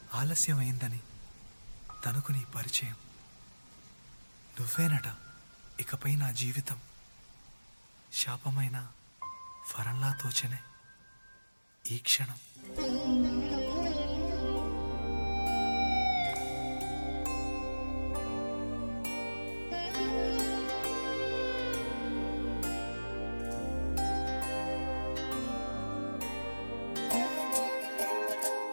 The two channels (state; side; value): inverted; both; correlation -1.00